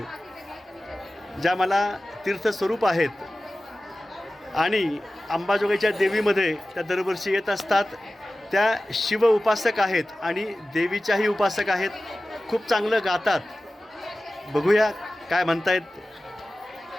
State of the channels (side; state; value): both; normal; correlation 0.96